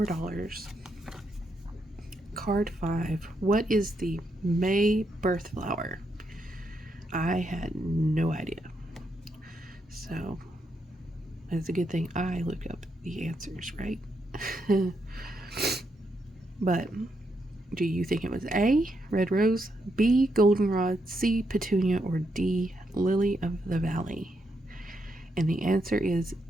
Card 5. What is the May birth flower? I had no idea. So it's a good thing I looked up the answers, right? But do you think it was A, red rose, B, goldenrod, C, petunia, or D, lily of the valley? And the answer is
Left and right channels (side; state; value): both; normal; correlation 0.80